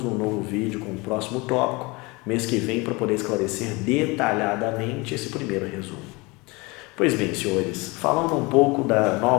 num novo vídeo com o próximo tópico, mês que vem, para poder esclarecer detalhadamente esse primeiro resumo. Pois bem, senhores, falando um pouco da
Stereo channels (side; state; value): right; quieter; 25.4 dB